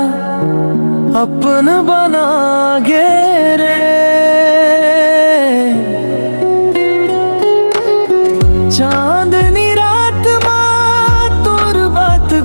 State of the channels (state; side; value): inverted; both; correlation -1.00